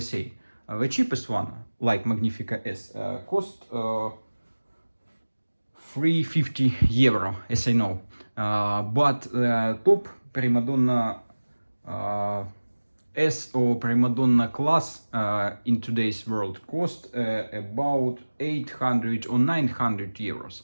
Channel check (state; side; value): inverted; both; correlation -1.00